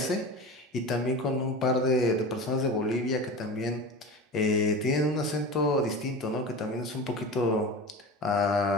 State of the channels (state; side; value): normal; both; correlation 0.31